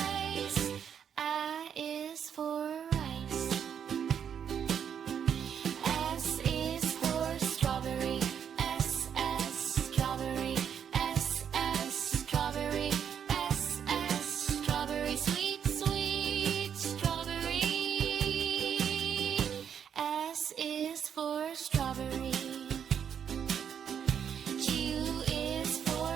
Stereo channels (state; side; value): quieter; left; 8.1 dB